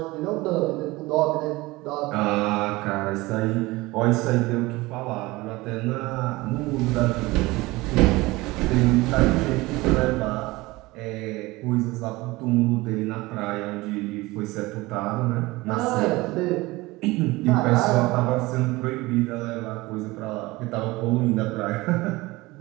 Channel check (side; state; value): left; quieter; 21.0 dB